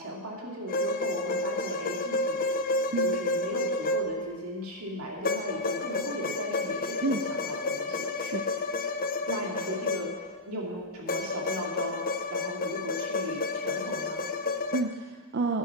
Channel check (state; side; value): normal; both; correlation -0.06